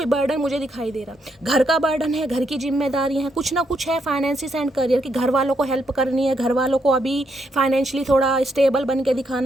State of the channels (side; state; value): both; normal; correlation 0.77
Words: बर्डन मुझे दिखाई दे रहा। घर का बर्डन है, घर की जिम्मेदारी है, कुछ ना कुछ है फाइनेंसिस एंड करियर की, घर वालों को हेल्प करनी है, घर वालों को अभी फाइनेंशियली थोड़ा स्टेबल बन के